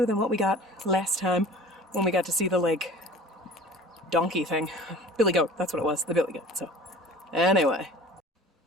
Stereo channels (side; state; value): both; normal; correlation 0.43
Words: than what we got last time when we got to see the like donkey thing. Billy goat. That's what it was. The billy goat. So anyway.